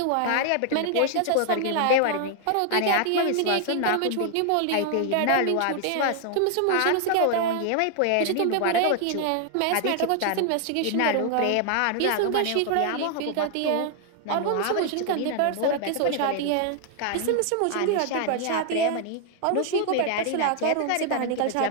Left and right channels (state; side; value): different; both; correlation 0.00